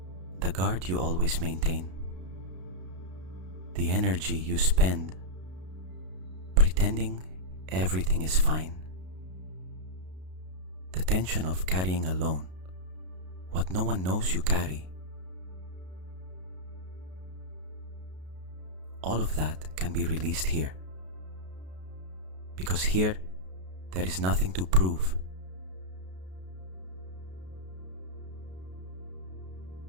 The guard you always maintain, the energy you spend pretending everything is fine, the tension of carrying alone what no one knows you carry. All of that can be released here, because here there is nothing to prove.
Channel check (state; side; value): late; left; 33 ms